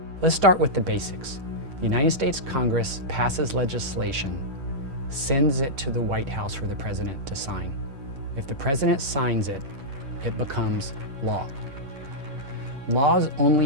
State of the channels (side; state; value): left; late; 10 ms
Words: Let's start with the basics. The United States Congress passes legislation, sends it to the White House for the president to sign. If the president signs it, it becomes law. Laws